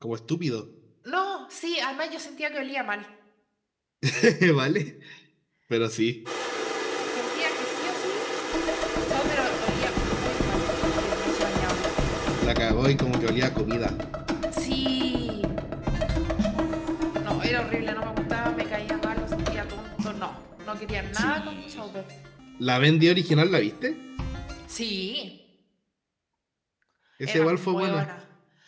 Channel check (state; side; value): identical; both; correlation 1.00